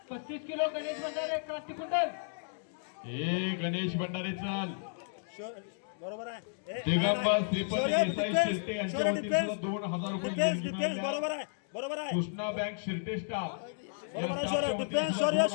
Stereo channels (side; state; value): right; silent; digital silence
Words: 35 किलो गणेश भंडारे क्रांती कुंडल हे गणेश भंडारे चाल बरोबर आहे। दिगंबर श्रीपती देसाई शिर्टे यांच्या वतीने सुद्धा 2000 रुपये देणगी मिळाली आहे। बरोबर आहे बरोबर आहे। कृष्णा बँक शिर्टे स्टाफ